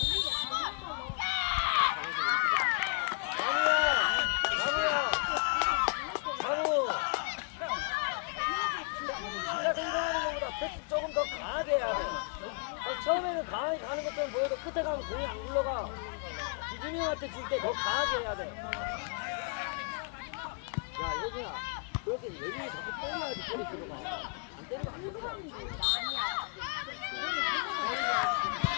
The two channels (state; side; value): quieter; right; 38.9 dB